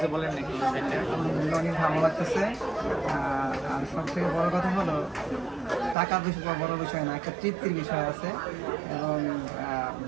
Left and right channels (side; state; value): left; drops out; at 6.0 s